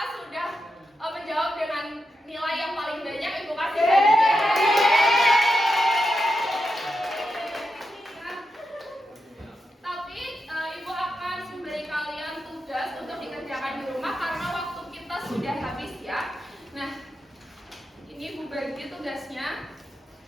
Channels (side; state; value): both; normal; correlation 0.87